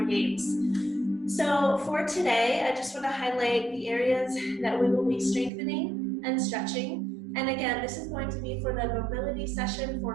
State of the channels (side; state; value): left; drops out; at 5.5 s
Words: games. So for today, I just want to highlight the areas that we will be strengthening and stretching. And again, this is going to be for the mobility session